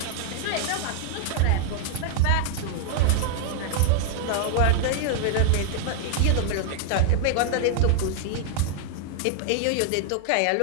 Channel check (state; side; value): different; both; correlation 0.00